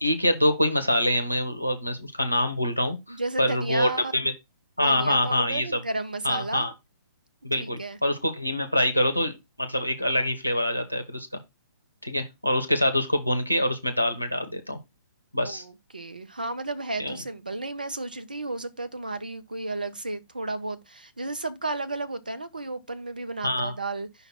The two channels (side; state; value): both; inverted; correlation -0.83